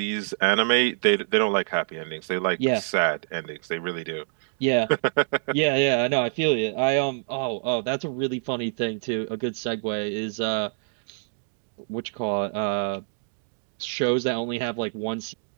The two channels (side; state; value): left; silent; digital silence